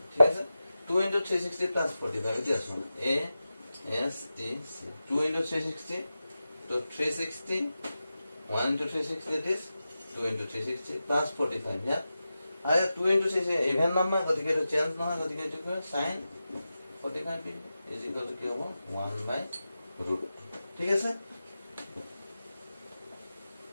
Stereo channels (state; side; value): inverted; both; correlation -0.93